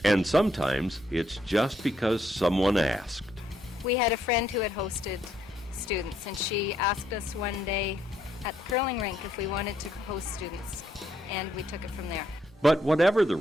And sometimes it's just because someone asked. We had a friend who had hosted students, and she asked us one day at the curling rink if we wanted to host students, and we took it from there. But whatever the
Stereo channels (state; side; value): normal; both; correlation 0.73